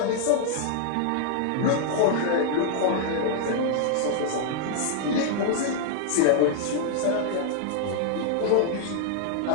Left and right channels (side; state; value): both; different; correlation 0.00